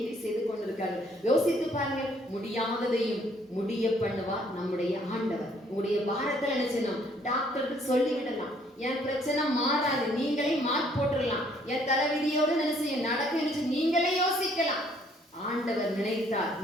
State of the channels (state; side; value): normal; both; correlation 0.64